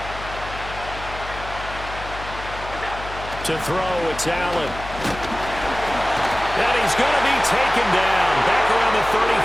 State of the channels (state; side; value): noise; left; hum, 12 dB below the sound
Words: To throw, it's Allen. And he's going to be taken down back around the